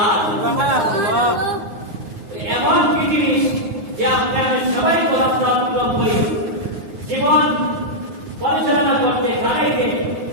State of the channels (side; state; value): left; late; 9.6 ms